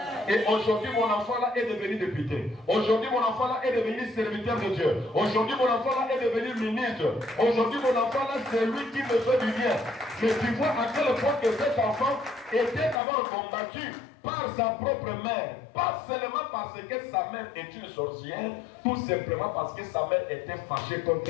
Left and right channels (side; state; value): right; drops out; at 13.0 s